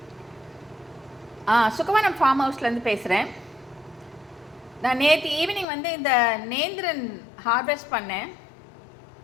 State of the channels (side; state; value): right; drops out; at 5.7 s